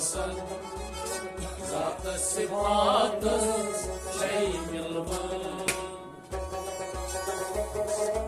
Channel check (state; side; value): identical; both; correlation 1.00